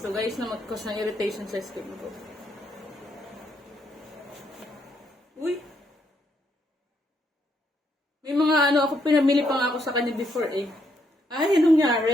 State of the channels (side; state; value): both; normal; correlation 0.75